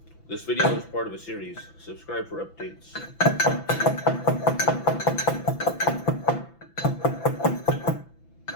This video is part of a series. Subscribe for updates.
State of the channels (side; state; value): right; late; 5.9 ms